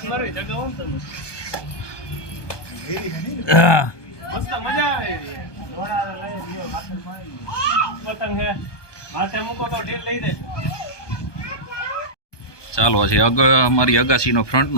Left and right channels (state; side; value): late; right; 1.2 ms